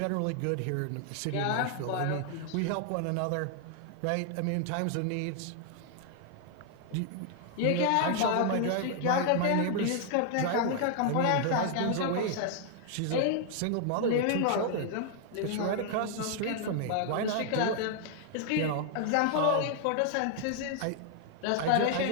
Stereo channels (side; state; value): both; different; correlation 0.00